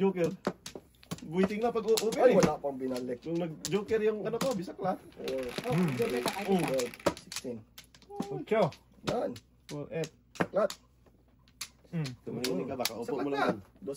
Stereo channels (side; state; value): both; identical; correlation 1.00